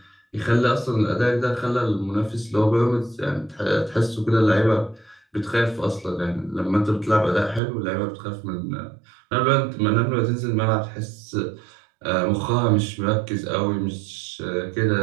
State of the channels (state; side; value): drops out; left; at 7.6 s